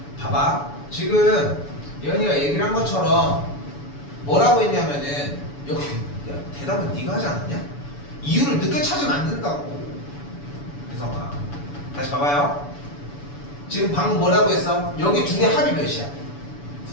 봐봐. 지금 연희가 얘기를 한 것처럼 뭐라고 했냐면은 여기 야, 대답은 네가 하지 않았냐? 이유를 늦게 찾으면 안 된다고. 혜성아, 다시 봐봐요. 지금 방금 뭐라고 했어? 여기 두 개 합이 몇이야?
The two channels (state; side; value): late; right; 7.0 ms